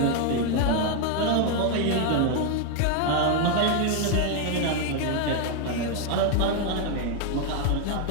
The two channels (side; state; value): both; different; correlation 0.00